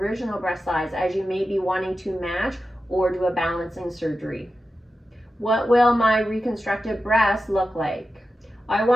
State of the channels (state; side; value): normal; both; correlation 0.92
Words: breast size, as you may be wanting to match or do a balancing surgery. What will my reconstructed breast look like? I